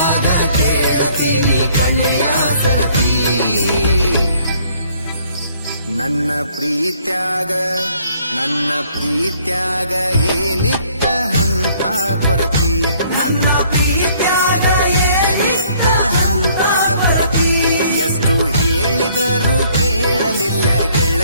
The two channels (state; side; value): inverted; both; correlation -0.62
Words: ಕೇಳತೀನಿ ಕೊನೆಯ ಸರತಿ. ನನ್ನ ಪ್ರೀತ್ಯಾಗ ಏನಿತ್ತ ಹಂತ ಕೊರತಿ, ನನ್ನ ಪ್ರೀತ್ಯಾಗ ಏನಿತ್ತ ಹಂತ ಕೊರತಿ. ಎಷ್ಟು ಹೇಳಿದರೂ ಕೇಳಲಿಲ್ಲ